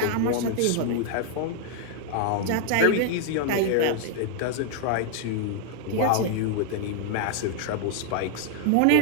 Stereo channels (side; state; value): both; different; correlation 0.00